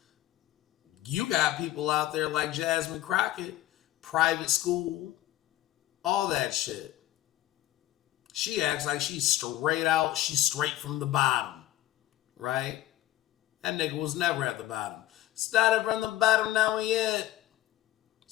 You got people out there like Jasmine Crockett, private school, all that shit. She acts like she's straight from the bottom, right? That nigga was never at the bottom. Started from the bottom, now we it.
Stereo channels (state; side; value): quieter; right; 14.7 dB